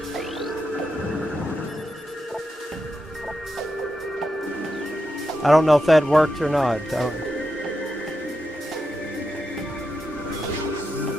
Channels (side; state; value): both; normal; correlation 0.87